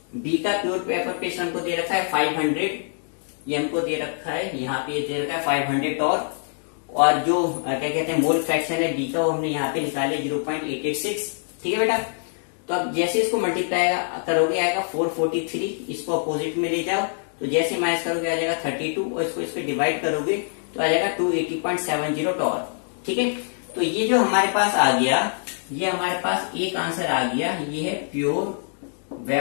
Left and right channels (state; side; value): silent; right; digital silence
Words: बी का प्योर वेपर प्रेशर हमको दे रखा है 500, ये हमको दे रखा है, यहाँ पे दे रखा है 500 टॉर, और जो क्या कहते हैं मोल फ्रैक्शन है बी का वो हमने यहाँ पे निकाल लिया 0.886। ठीक है बेटा, तो अब जैसे इसको मल्टीप्लाई करोगे आएगा 443, इसको अपोजिट में ले जाओ, तो जैसे माइनस करोगे आ जाएगा 32, और इसको डिवाइड करोगे तो आ जाएगा 280.70 टॉर। ठीक है, तो ये जो हमारे पास आ गया, ये हमारे पास एक आंसर आ गया, ये है pure